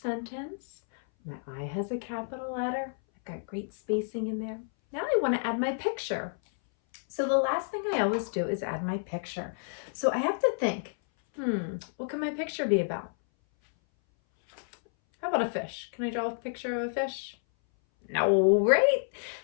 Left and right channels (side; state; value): right; silent; 58 dB below the other